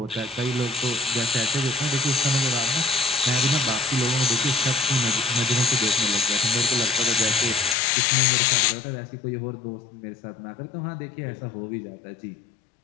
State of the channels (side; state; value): right; drops out; at 7.8 s